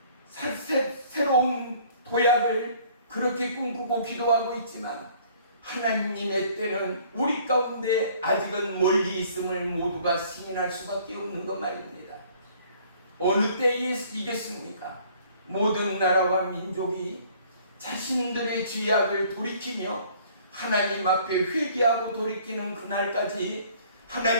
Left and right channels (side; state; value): both; inverted; correlation -0.56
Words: 새로운 도약을 그렇게 꿈꾸고 기도하고 있지만 하나님의 때는 우리 가운데 아직은 멀리 있음을 모두가 시인할 수밖에 없는 것 말입니다. 어느 때이겠습니까? 모든 나라와 민족이 자신들의 죄악을 돌이키며 하나님 앞에 회개하고 돌이키는 그날까지